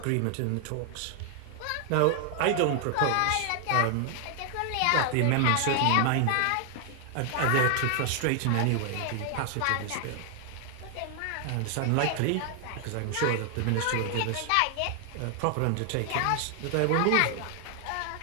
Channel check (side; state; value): both; different; correlation 0.00